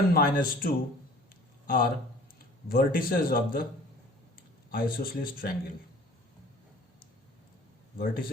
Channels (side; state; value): both; normal; correlation 0.49